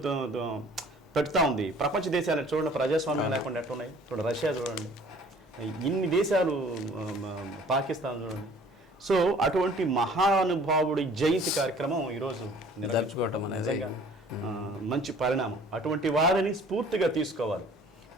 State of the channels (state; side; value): normal; both; correlation 0.52